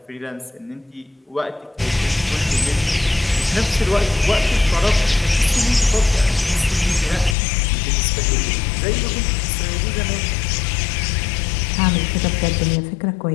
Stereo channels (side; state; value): right; drops out; at 7.4 s